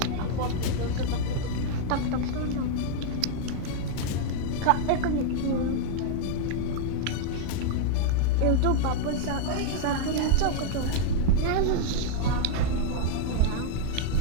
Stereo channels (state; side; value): different; both; correlation 0.00